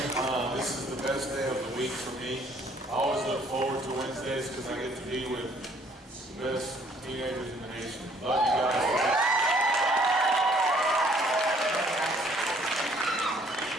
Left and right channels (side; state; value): both; normal; correlation 0.61